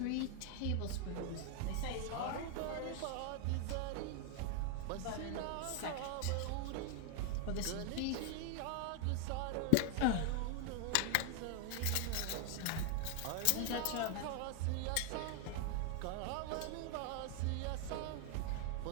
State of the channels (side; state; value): both; different; correlation 0.00